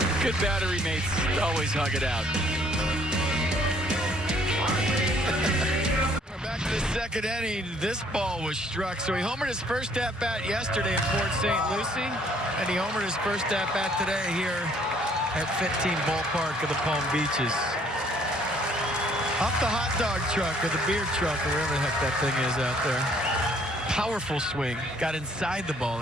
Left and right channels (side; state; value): both; normal; correlation 0.62